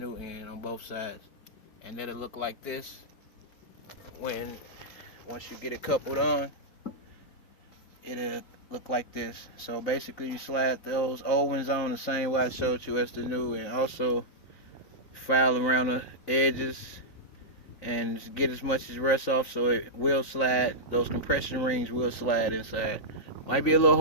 end on both sides. And then it'll look like this once you get it coupled on. It'll look like this. So basically, you slide those old ones on the same way I showed you as the new, and also file around the edges and get as much as rust off so it will slide. Those compression rings will slide inside. Might be a little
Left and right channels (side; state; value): right; late; 4.0 ms